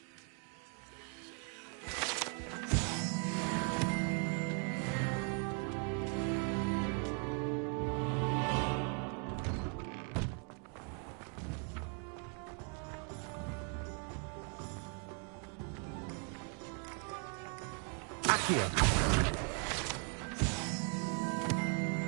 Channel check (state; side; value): quieter; left; 39.5 dB